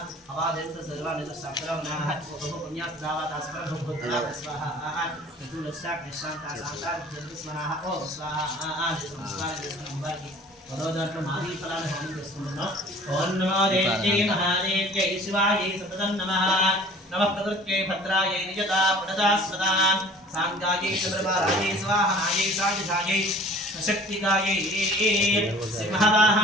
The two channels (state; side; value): normal; both; correlation 0.48